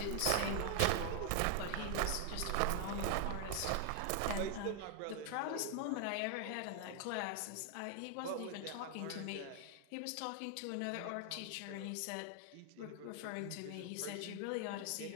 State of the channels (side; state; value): both; different; correlation 0.00